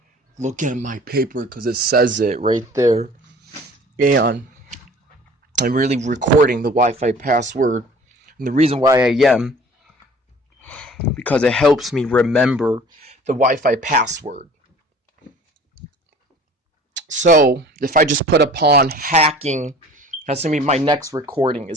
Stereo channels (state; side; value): normal; both; correlation 0.47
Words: look at my paper because it says it right there, and I'm really recording the Wi-Fi password. And the reason why I am because it helps me remember the Wi-Fi password. So if I just put upon hacking, that's gonna be my next recording